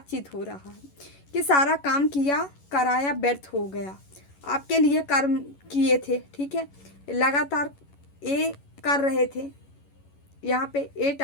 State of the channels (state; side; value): late; right; 11 ms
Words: हो रहा है कि सारा काम किया कराया व्यर्थ हो गया, आपके लिए कर्म किए थे, ठीक है, लगातार ये कर रहे थे। यहाँ पे 8